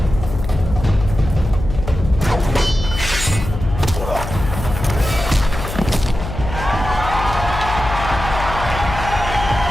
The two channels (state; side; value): noise; left; hum, 8 dB below the sound